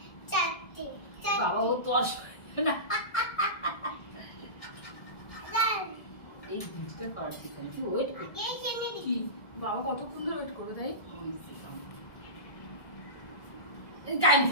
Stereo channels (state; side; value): late; right; 1.8 ms